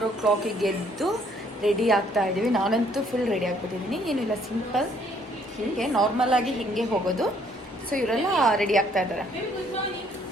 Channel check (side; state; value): both; normal; correlation 0.64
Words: o'clock ಎದ್ದು ರೆಡಿ ಆಗ್ತಾ ಇದ್ದೀವಿ. ನಾನಂತೂ ಫುಲ್ ರೆಡಿ ಆಗಿಬಿಟ್ಟಿದ್ದೀನಿ. ಏನಿಲ್ಲ, ಸಿಂಪಲ್ ಹೀಗೆ ನಾರ್ಮಲಾಗಿ ಹೀಗೆ ಹೋಗೋದು. ಸೊ ಇವರೆಲ್ಲ ರೆಡಿ ಆಗ್ತಾ ಇದ್ದಾರೆ.